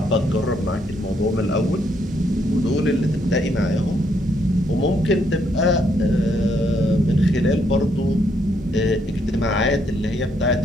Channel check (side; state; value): both; normal; correlation 0.73